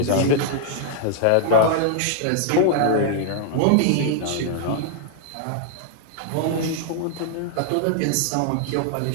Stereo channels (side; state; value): both; different; correlation -0.01